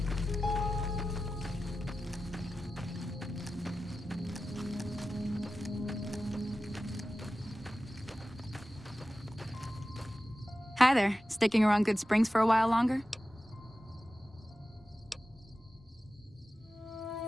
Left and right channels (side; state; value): both; normal; correlation 0.94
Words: Hi there. Sticking around Good Springs for a while longer?